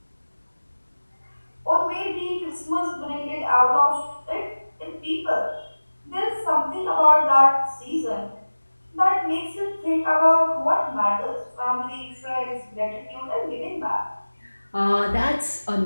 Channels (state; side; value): inverted; both; correlation -1.00